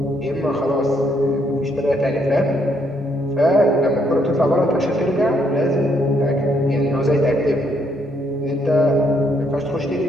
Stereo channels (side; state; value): both; normal; correlation 0.72